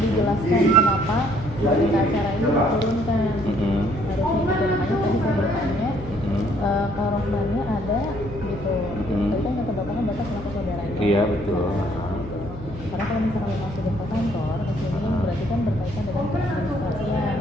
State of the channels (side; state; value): left; noise; hum, 13 dB below the sound